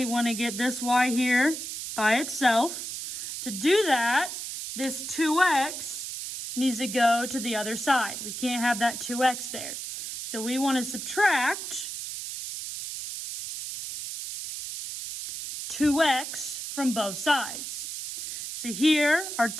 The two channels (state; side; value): noise; right; hiss, 7 dB below the sound